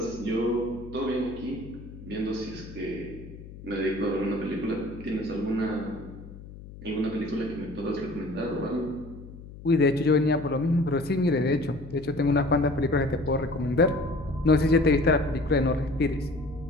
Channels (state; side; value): noise; left; hum, 16 dB below the sound